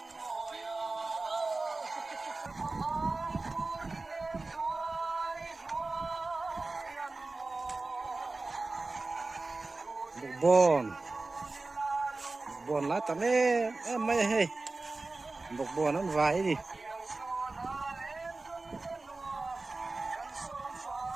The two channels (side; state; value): left; quieter; 3.4 dB